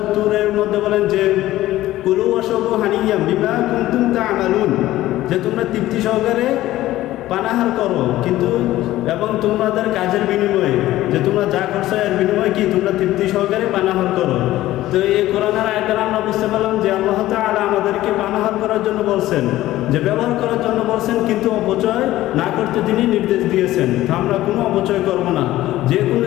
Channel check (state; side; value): quieter; right; 15.4 dB